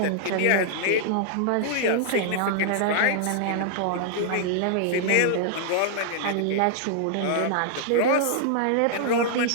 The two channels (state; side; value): different; both; correlation -0.01